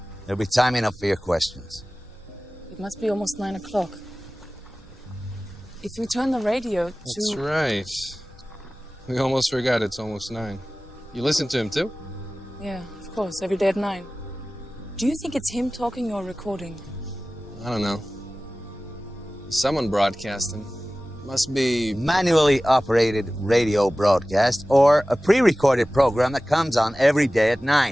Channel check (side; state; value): both; normal; correlation 0.97